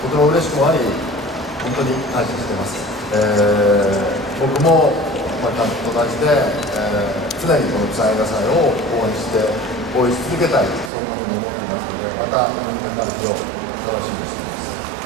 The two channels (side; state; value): left; drops out; at 10.9 s